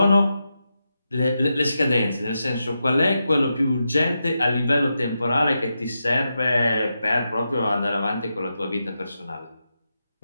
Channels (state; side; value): inverted; both; correlation -0.88